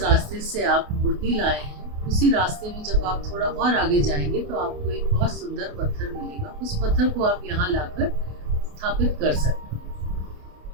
रास्ते से आप मूर्ति लाए हैं, उसी रास्ते में जब आप थोड़ा और आगे जाएंगे तो आपको एक बहुत सुंदर पत्थर मिलेगा। उस पत्थर को आप यहाँ लाकर स्थापित कर सकते हैं।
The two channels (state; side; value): late; left; 28 ms